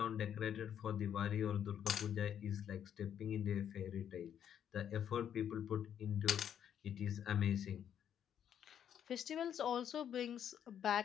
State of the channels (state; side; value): quieter; right; 9.3 dB